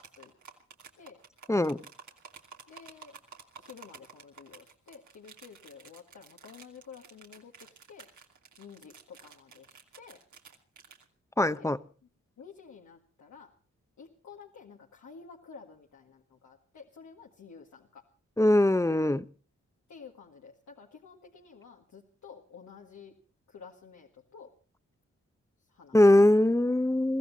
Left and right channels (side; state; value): both; normal; correlation 0.92